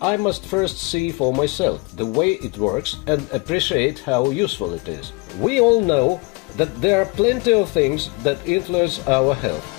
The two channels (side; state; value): right; quieter; 28.0 dB